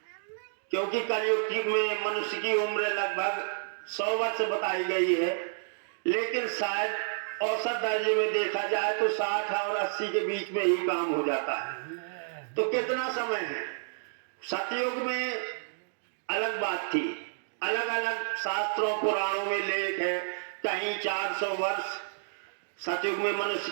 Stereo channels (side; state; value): left; silent; digital silence